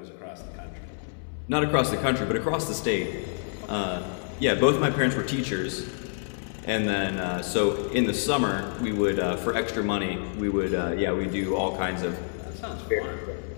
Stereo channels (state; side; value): silent; right; 60 dB below the other